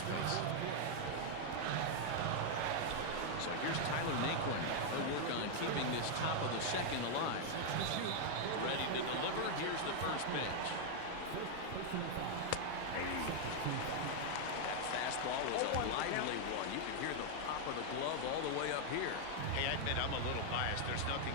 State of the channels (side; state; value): both; different; correlation 0.00